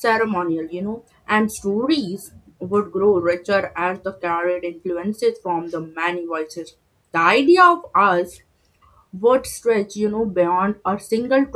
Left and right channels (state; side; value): identical; both; correlation 1.00